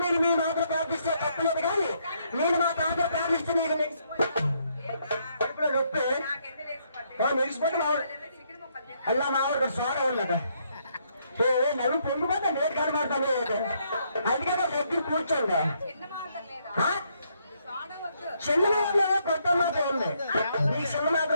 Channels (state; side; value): inverted; both; correlation -0.73